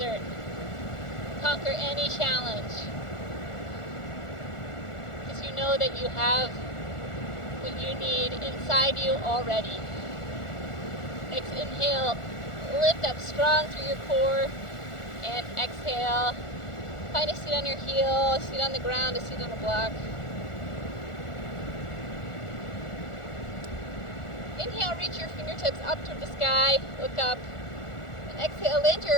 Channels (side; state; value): right; late; 1.4 ms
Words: conquer any challenge, because you know that you have what you need inside you already. Next, inhale, lift up strong through your core, and exhale, find a seat on your heel, a seat on the ground, a seat on a block. Inhale, reach your fingertips up toward the sky, look up, and exhale, land